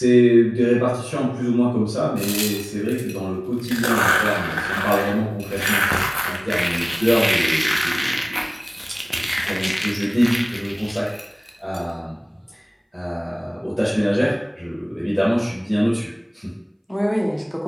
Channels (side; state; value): both; identical; correlation 1.00